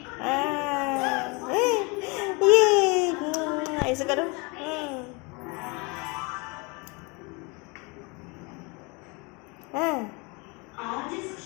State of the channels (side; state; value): right; quieter; 29.2 dB